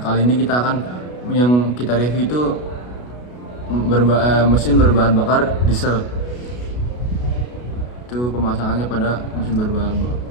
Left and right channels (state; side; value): late; right; 33 ms